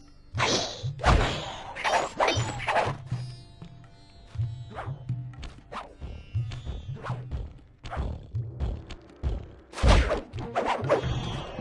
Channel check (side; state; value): both; identical; correlation 1.00